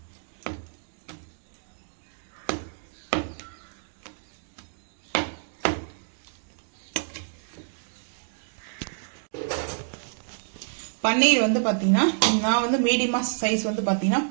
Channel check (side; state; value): left; silent; digital silence